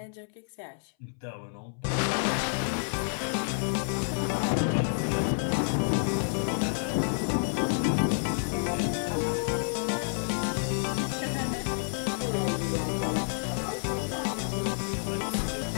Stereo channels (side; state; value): right; silent; 58 dB below the other